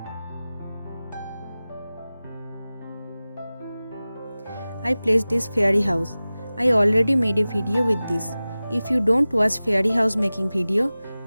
I placed this fairy house. I already made a video with this. If you don't watch fairy house making video,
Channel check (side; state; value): both; inverted; correlation -0.97